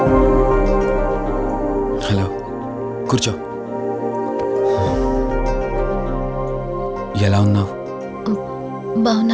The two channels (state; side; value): identical; both; correlation 1.00